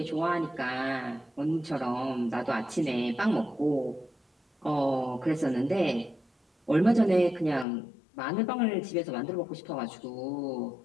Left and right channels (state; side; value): drops out; right; at 7.7 s